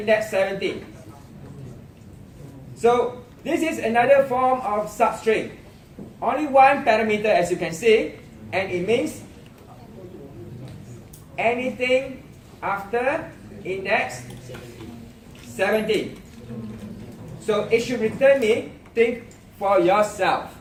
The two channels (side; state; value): both; identical; correlation 1.00